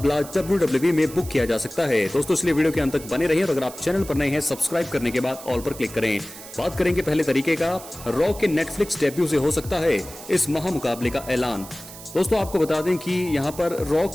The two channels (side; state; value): right; noise; hiss, 15 dB below the sound